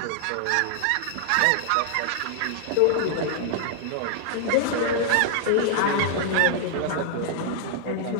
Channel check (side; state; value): both; different; correlation -0.01